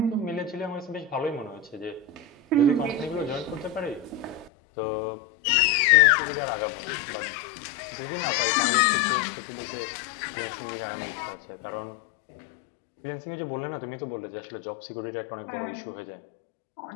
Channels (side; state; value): right; drops out; at 4.5 s